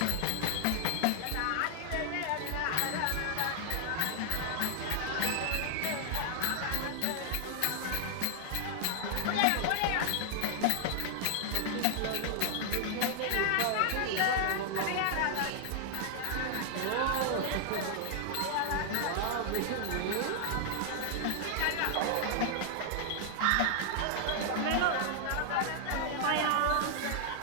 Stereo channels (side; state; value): both; different; correlation 0.00